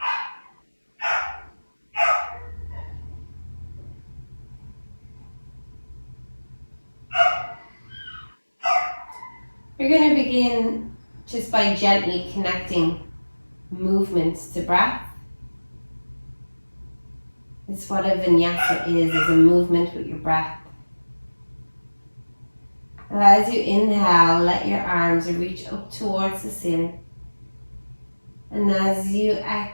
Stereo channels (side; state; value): both; inverted; correlation -1.00